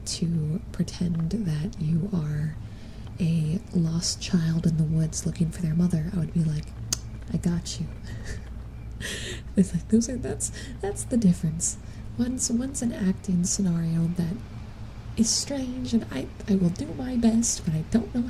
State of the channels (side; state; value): both; identical; correlation 1.00